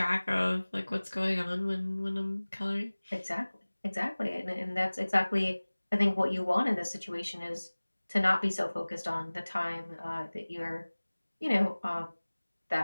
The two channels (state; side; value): inverted; both; correlation -1.00